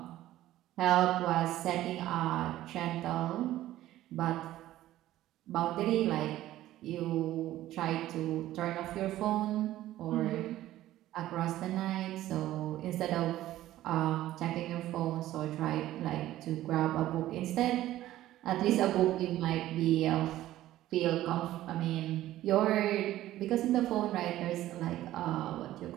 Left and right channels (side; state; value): left; quieter; 14.4 dB